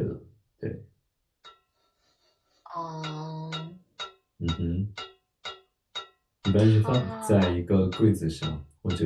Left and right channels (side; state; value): both; identical; correlation 1.00